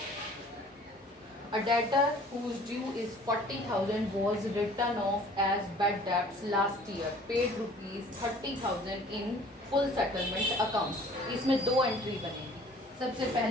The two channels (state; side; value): normal; both; correlation 0.51